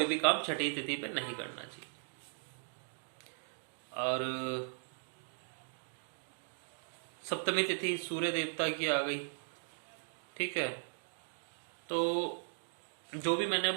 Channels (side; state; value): left; silent; digital silence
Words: भी काम छठी तिथि पे नहीं करना चाहिए। और सप्तमी तिथि सूर्य देवता की आ गई। ठीक है, तो जो भी मैंने